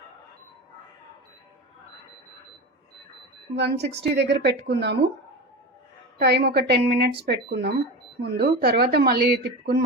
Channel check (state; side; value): normal; both; correlation 0.26